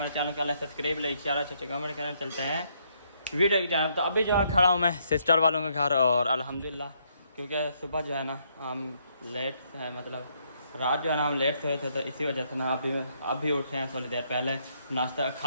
चैनल का सब्सक्राइब लाइक शेयर कमेंट करना चलते हैं वीडियो की जानब। तो अभी जो है खड़ा हूँ मैं सिस्टर वालों के घर और अल्हम्दुलिल्लाह क्योंकि सुबह जो है ना हम लेट है, मतलब रात जो है ना हम लेट सोए थे तो इसी वजह से ना अभी उठे हैं थोड़ी देर पहले। नाश्ता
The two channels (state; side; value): inverted; both; correlation -0.72